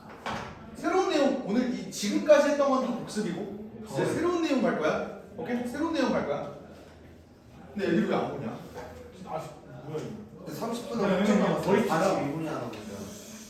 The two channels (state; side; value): identical; both; correlation 1.00